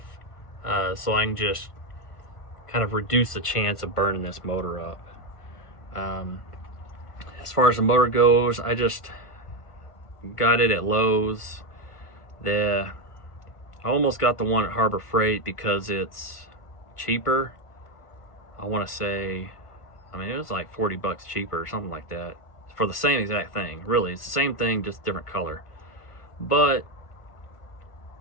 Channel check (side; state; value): right; late; 1.5 ms